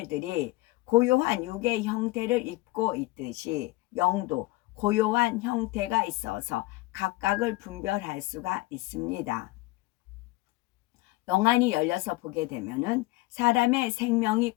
고요한 육의 형태를 입고 있듯이 영도 고요한 형태가 있어서 각각을 분별할 수가 있습니다. 영안이 열려서 보게 되면은 사람의 생명이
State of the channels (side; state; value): right; quieter; 20.6 dB